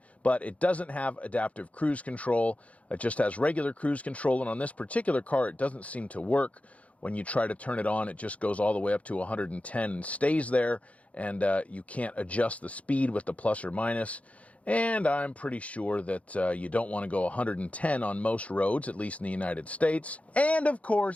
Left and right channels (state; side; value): late; right; 0.065 ms